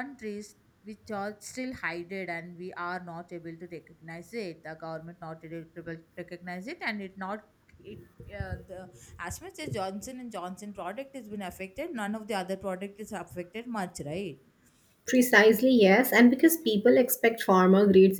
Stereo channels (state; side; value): identical; both; correlation 1.00